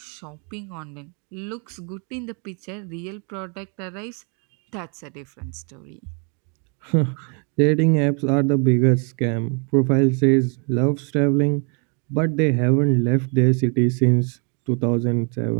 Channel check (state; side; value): quieter; left; 37.7 dB